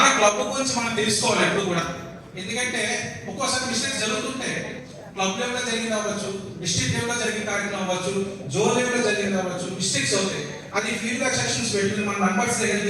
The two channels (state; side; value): identical; both; correlation 1.00